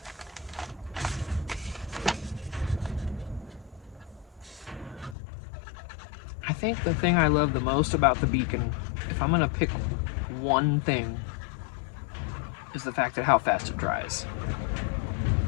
I think the thing I love the most about the beacon, if I'm gonna pick one thing, is the fact that how fast it dries.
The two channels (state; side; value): drops out; right; at 5.2 s